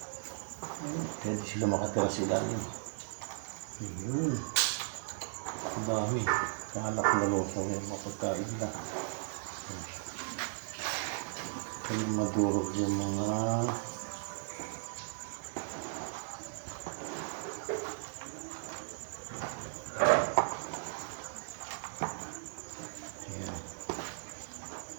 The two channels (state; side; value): silent; left; digital silence